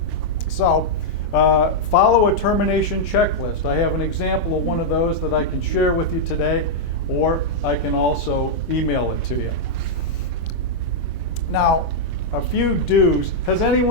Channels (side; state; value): both; normal; correlation -0.04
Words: So, follow a termination checklist. I have an example of one of those that I can share with you today, or I can also email it to you. Now, a few do's. Has